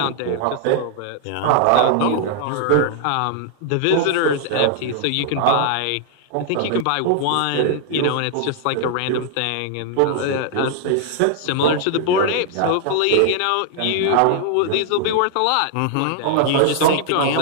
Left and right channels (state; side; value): different; both; correlation 0.00